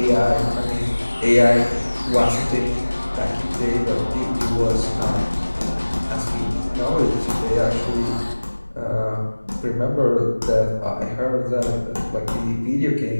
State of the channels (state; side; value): inverted; both; correlation -1.00